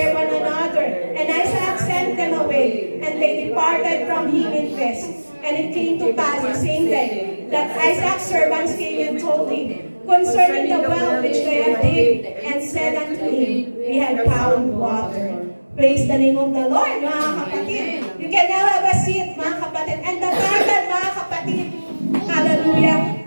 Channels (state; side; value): inverted; both; correlation -1.00